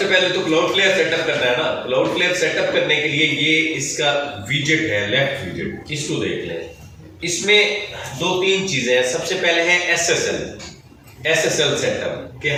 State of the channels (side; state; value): both; identical; correlation 1.00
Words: पहले तो क्लाउडफ्लेयर सेटअप करना है ना। क्लाउडफ्लेयर सेटअप करने के लिए ये इसका विजेट है, लेफ्ट विजेट, इसको देख लें। इसमें 2-3 चीजें हैं। सबसे पहले है SSL सेटअप, कि